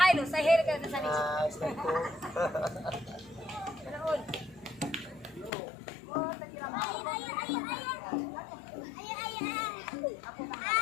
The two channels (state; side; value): drops out; right; at 5.5 s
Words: hai lo, saya heri ke Rusa Nicip. Assalamualaikum. Terus. Oh, tadi ramah. Aku